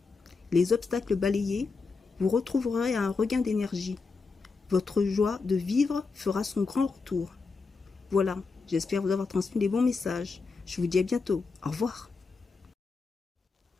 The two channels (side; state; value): right; quieter; 4.4 dB